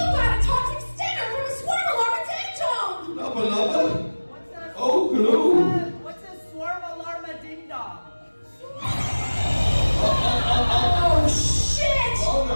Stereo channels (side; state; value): both; inverted; correlation -1.00